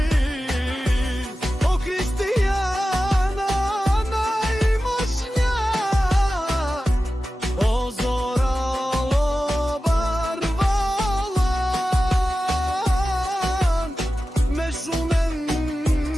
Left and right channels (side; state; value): both; normal; correlation 0.94